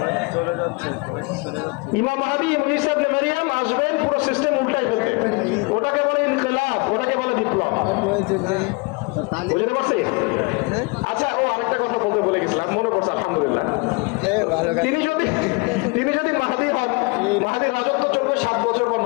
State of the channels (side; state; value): right; quieter; 28.8 dB